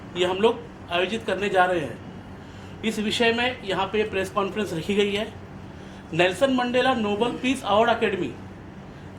ये हम लोग आयोजित करने जा रहे हैं। इस विषय में यहाँ पे प्रेस कॉन्फ्रेंस रखी गई है। Nelson Mandela Nobel peace award academy,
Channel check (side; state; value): both; identical; correlation 1.00